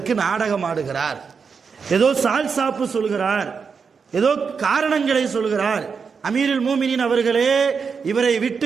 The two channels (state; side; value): quieter; left; 5.7 dB